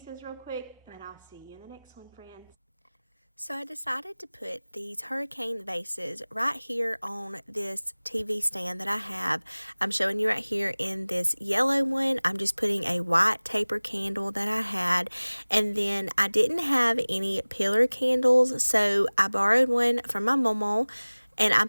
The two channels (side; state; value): both; inverted; correlation -1.00